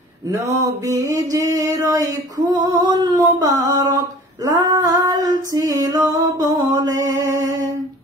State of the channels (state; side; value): normal; both; correlation 0.45